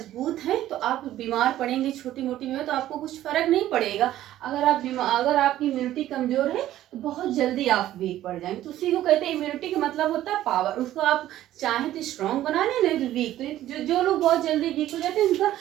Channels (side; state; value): left; quieter; 13.5 dB